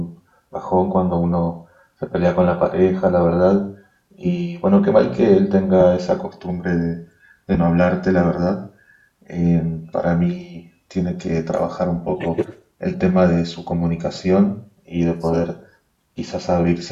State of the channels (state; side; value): identical; both; correlation 1.00